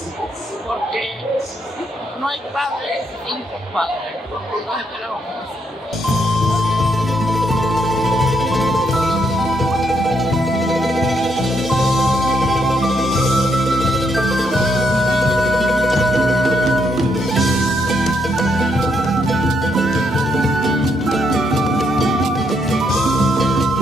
porque no hay padre sin compadre. Los esperamos.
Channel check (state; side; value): normal; both; correlation 0.76